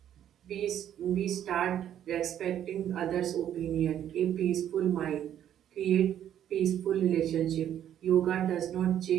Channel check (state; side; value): quieter; left; 10.5 dB